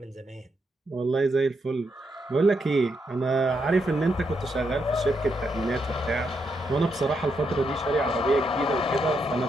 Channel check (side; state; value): both; normal; correlation 0.80